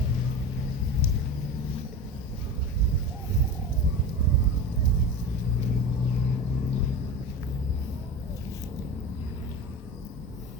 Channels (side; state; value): both; normal; correlation 0.29